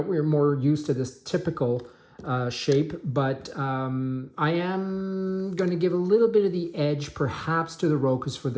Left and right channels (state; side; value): identical; both; correlation 1.00